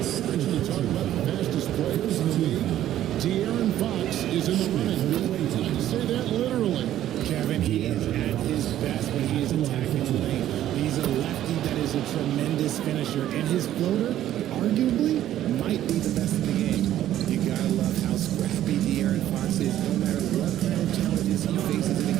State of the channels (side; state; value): left; quieter; 12.4 dB